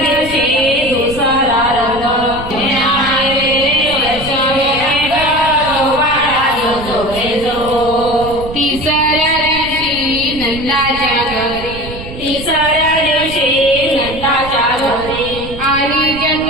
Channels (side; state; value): right; noise; rumble, 12 dB below the sound